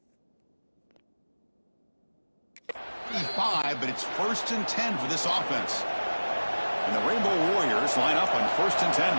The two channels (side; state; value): both; inverted; correlation -1.00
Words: 5, but it's 1st and 10 for this offense. And the Rainbow Warriors line up on 1st and 10